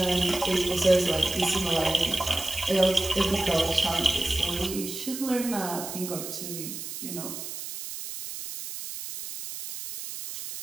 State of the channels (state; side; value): noise; right; hiss, 8 dB below the sound